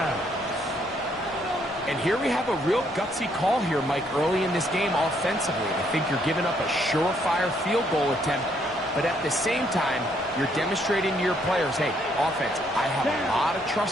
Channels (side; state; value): both; normal; correlation 0.70